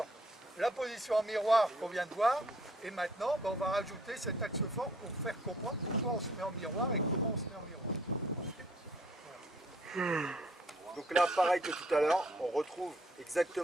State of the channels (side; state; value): both; normal; correlation 0.62